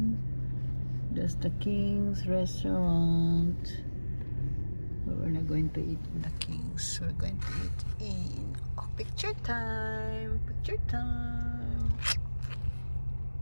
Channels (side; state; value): both; inverted; correlation -1.00